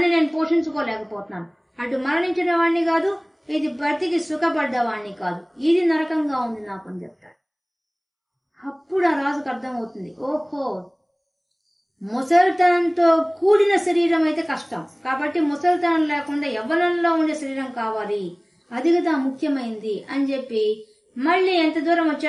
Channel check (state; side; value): identical; both; correlation 1.00